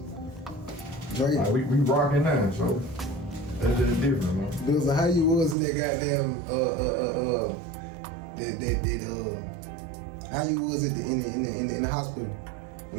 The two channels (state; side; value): drops out; left; at 5.6 s